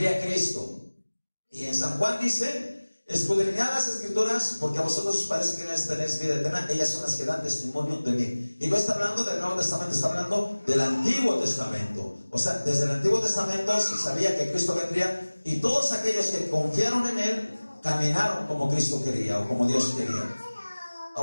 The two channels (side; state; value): both; inverted; correlation -1.00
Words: Cristo. Y en San Juan dice: escudriñad las Escrituras, porque a vosotros os parece que tenéis vida eterna, ellas son las que dan testimonio de mí. Y no está hablando del Nuevo Testamento, está hablando del Antiguo Testamento. O sea, desde el Antiguo Testamento se sabía que Cristo vendría, y todos aquellos que confiaron en Él caminaron como Cristo quería o como Dios quería.